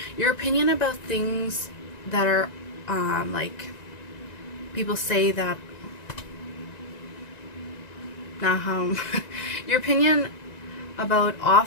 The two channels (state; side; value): late; right; 1.9 ms